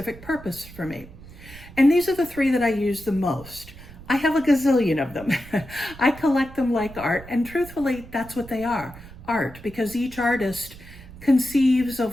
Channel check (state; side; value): noise; right; rumble, 17 dB below the sound